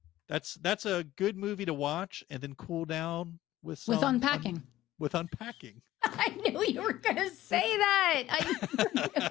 That's a good movie to watch and then cool down with With some Unpacking. with Unpacking. I knew you were going to say that. I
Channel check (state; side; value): quieter; right; 14.9 dB